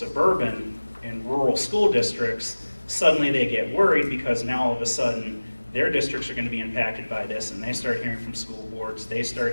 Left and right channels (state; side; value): inverted; both; correlation -1.00